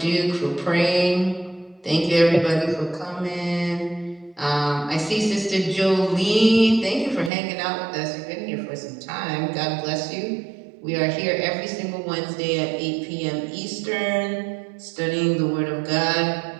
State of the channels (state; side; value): drops out; left; at 7.3 s